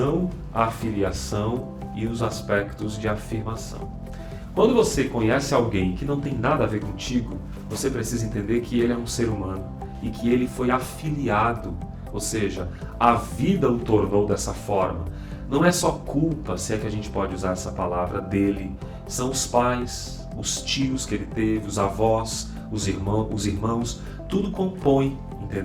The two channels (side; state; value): both; identical; correlation 1.00